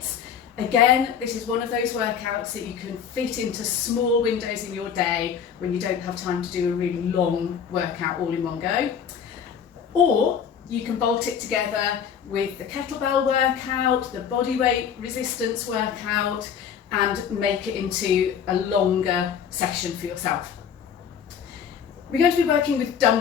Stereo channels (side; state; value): right; quieter; 7.7 dB